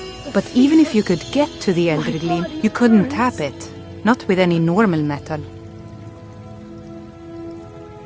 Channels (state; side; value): identical; both; correlation 1.00